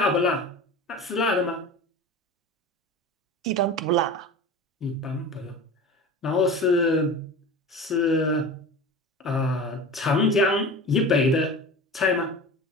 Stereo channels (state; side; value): normal; both; correlation 0.34